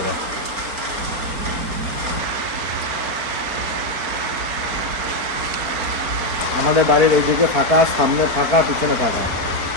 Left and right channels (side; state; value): left; late; 4.5 ms